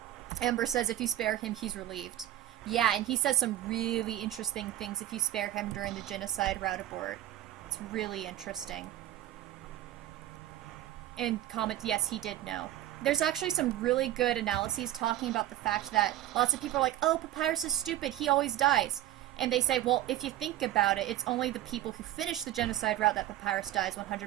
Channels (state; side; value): quieter; left; 13.6 dB